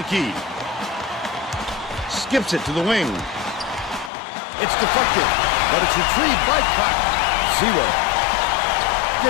key. Skips it to the wing. It's deflected, but it's retrieved by Cotton. Zero.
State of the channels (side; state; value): right; drops out; at 4.1 s